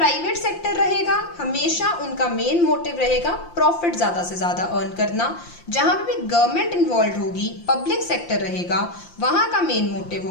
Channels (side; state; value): right; late; 5.8 ms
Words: सेक्टर रहेगा हमेशा उनका मेन मोटिव रहेगा प्रॉफिट ज्यादा से ज्यादा अर्न करना। जहां पे भी गवर्नमेंट इन्वॉल्व होगी, पब्लिक सेक्टर रहेगा, वहां का मेन मोटिव